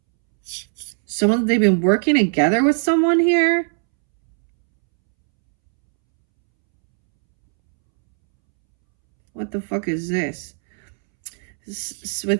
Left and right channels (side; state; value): left; silent; 66 dB below the other